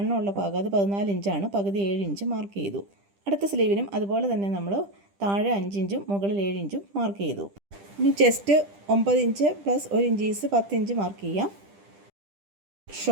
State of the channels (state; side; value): late; left; 10 ms